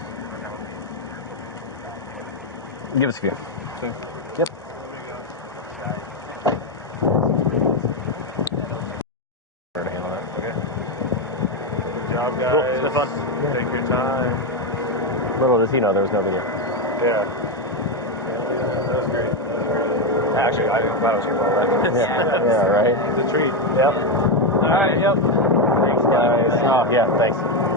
Give us a few. Okay. Yep. Okay. Good job, guys. Cool. It's been fun. Take your time. Little does he know there was no video. Yeah. That's great. Actually, I'm glad I was here for all that. Yeah, right? It's a treat. Yep. All right, yep. Thanks, guys. Oh, yeah, thanks.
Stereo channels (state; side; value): normal; both; correlation 0.08